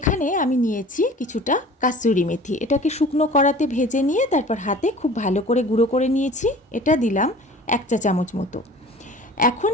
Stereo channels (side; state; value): both; normal; correlation 0.44